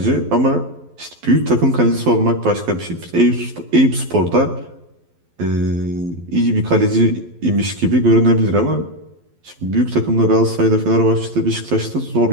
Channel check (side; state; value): left; late; 12 ms